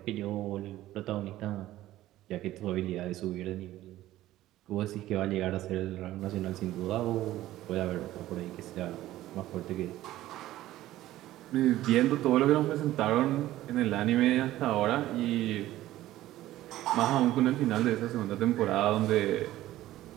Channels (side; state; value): left; quieter; 14.9 dB